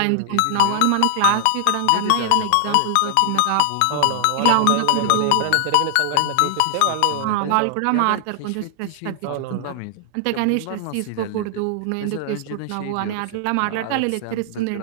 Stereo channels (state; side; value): different; both; correlation 0.00